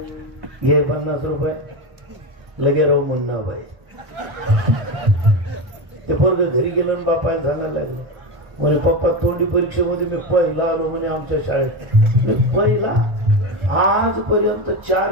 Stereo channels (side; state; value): left; late; 1.4 ms